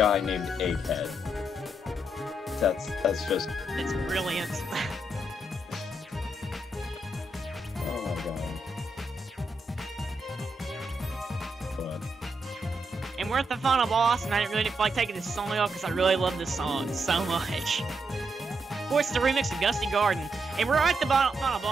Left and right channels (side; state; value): both; normal; correlation 0.81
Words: named Egghead. That's just... It's brilliant. Oh my god. But... And we're at the final boss, and I didn't really feel like taking this song off because I really love this song so much. Of course, it's a remix of Gusty Garden, and we're at the final